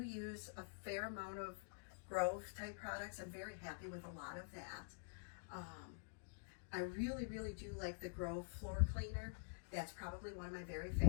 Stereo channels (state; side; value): silent; right; digital silence